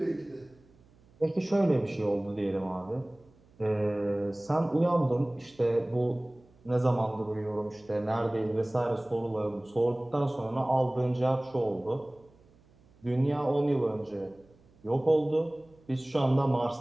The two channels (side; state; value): right; noise; hum, 29 dB below the sound